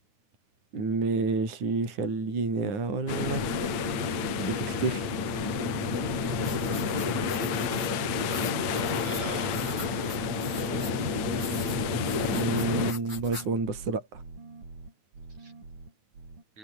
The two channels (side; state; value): left; late; 9.1 ms